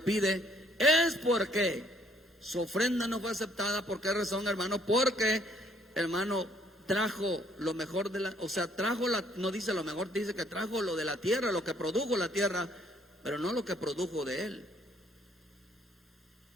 pide es porque su ofrenda no fue aceptada. ¿Por qué razón, hermano? Porque, hermano, trajo lo mejor no dice lo mejor, dice que trajo lo de la tierra, lo que produjo la tierra, pero no lo que produjo de él.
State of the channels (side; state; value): both; normal; correlation 0.64